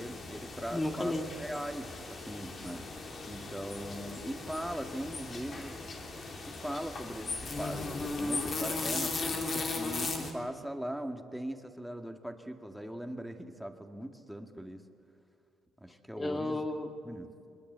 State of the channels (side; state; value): both; normal; correlation 0.88